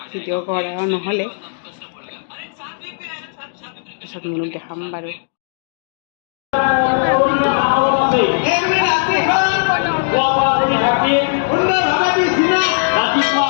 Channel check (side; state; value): right; silent; digital silence